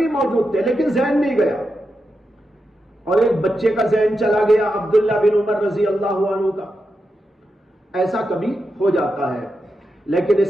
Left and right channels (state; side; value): normal; both; correlation 0.87